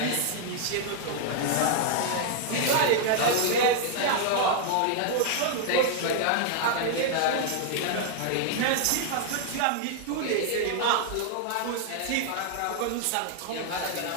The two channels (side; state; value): both; different; correlation 0.00